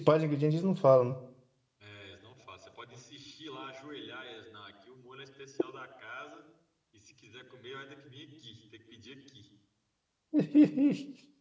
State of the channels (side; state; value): both; identical; correlation 1.00